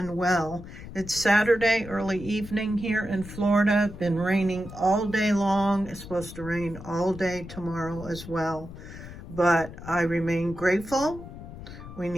well. It's Saturday, early evening here in Florida. Been raining all day long. It's supposed to rain all day tomorrow as well. But I remain grateful. We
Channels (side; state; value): left; noise; rumble, 13 dB below the sound